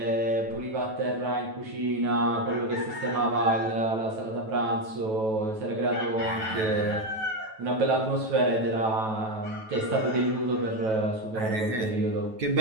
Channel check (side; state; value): left; late; 9.2 ms